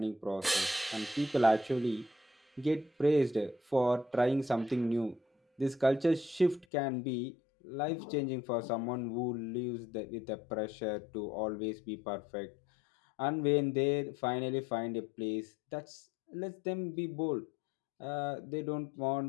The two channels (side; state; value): right; drops out; at 6.7 s